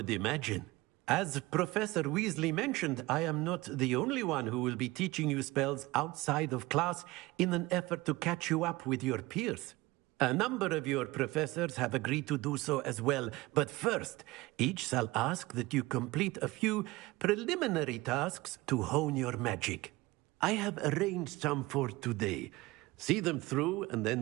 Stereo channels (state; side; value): quieter; left; 20.7 dB